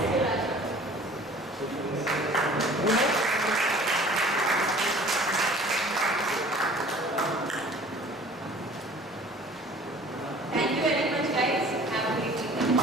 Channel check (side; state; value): both; normal; correlation 0.48